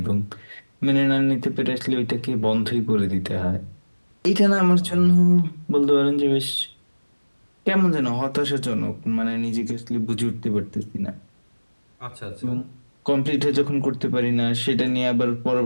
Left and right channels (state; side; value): inverted; both; correlation -1.00